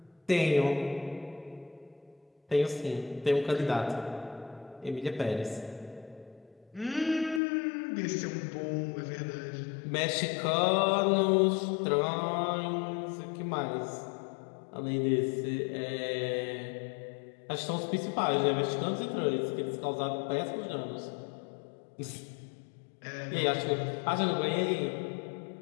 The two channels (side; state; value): right; drops out; at 7.4 s